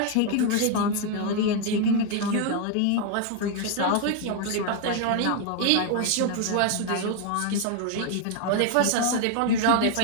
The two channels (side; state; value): both; different; correlation 0.01